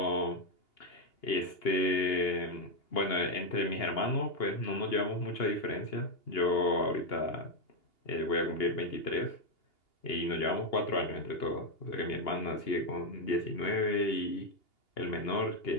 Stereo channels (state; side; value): late; right; 2.8 ms